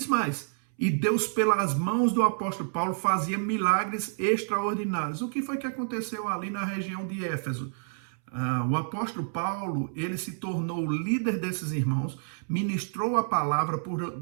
mais, e Deus, pelas mãos do apóstolo Paulo, fazia milagres extraordinários. O que foi que aconteceu ali na região de Éfeso? O apóstolo Paulo, ele se tornou o líder desses irmãos, ministrou a palavra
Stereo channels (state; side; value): silent; left; 59 dB below the other